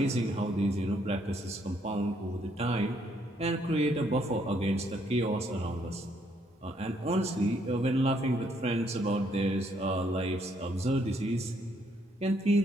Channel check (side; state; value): both; normal; correlation 0.70